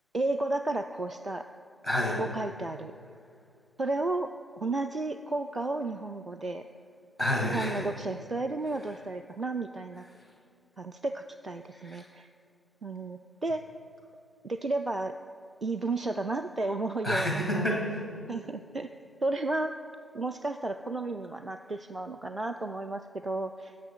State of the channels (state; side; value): normal; both; correlation 0.72